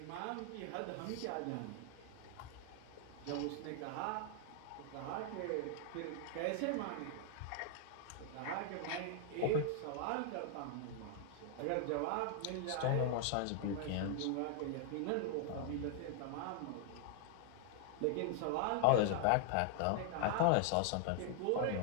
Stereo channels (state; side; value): different; both; correlation 0.00